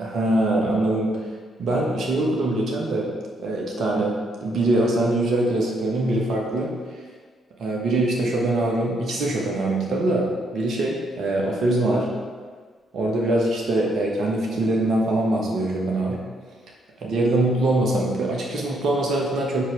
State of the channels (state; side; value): normal; both; correlation 0.73